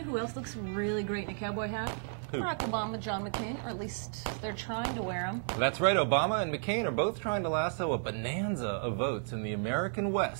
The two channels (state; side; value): silent; left; digital silence